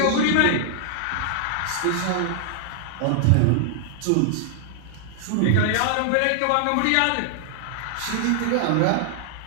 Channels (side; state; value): both; different; correlation -0.01